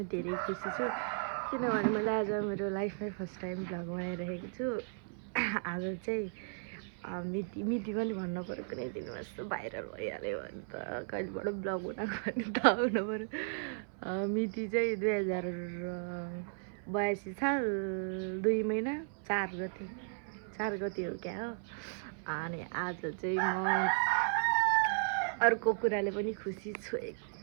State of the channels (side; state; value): left; silent; 54 dB below the other